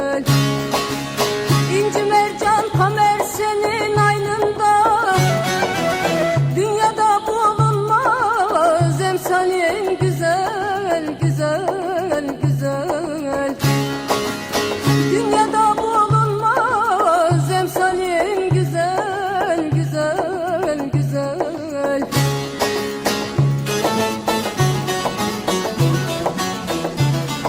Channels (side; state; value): both; identical; correlation 1.00